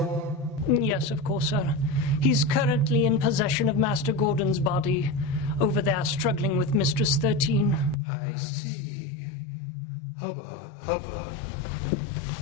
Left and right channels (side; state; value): right; drops out; at 8.0 s